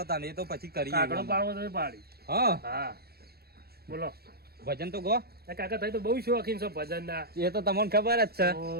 તાને એ તો પછી કરીએ કાકડો પાડવો તો એ પાડી હા હા બોલો ભજન તો ગો એ કાકા થઈ તો બહુ શોખીન છો ભજન ના એ તો તમને ખબર જ છે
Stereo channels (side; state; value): left; late; 0.46 ms